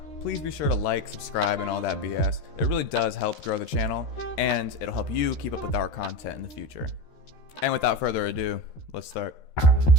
please be sure to like, subscribe, and all that BS. It really does help grow the channel, and it'll help you keep up with our content in the future. And without further ado, let's start.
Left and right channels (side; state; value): right; late; 13 ms